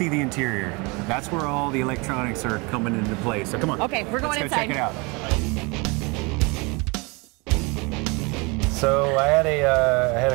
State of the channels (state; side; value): quieter; left; 28.2 dB